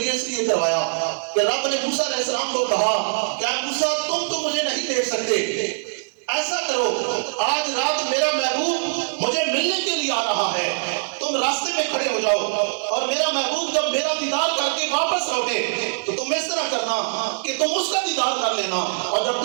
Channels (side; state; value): left; silent; 56 dB below the other